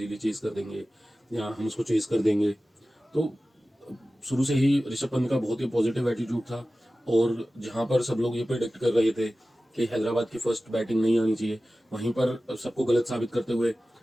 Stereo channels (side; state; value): both; normal; correlation 0.96